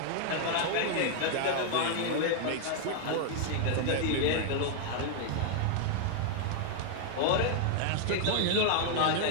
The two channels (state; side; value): different; both; correlation 0.00